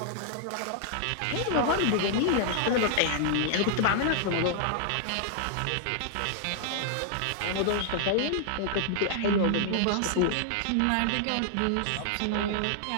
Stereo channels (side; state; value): both; different; correlation -0.01